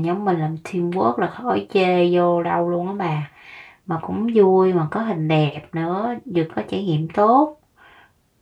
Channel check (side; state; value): both; identical; correlation 1.00